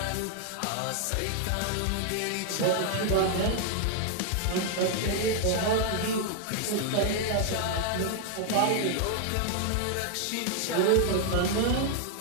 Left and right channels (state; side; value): different; both; correlation 0.00